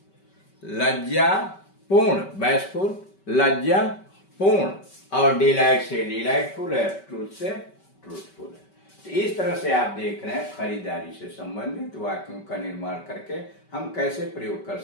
लज्जापूर्ण, बैसफुल लज्जापूर्ण, और डिलाइट से डिलाइटफुल है, ट्रूथ से ट्रूथफुल है। तो इस तरह से आप देख रहे हैं खरीदारी से संबंधित वाक्यों का निर्माण करके हम कैसे प्रयोग कर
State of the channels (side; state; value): right; late; 5.2 ms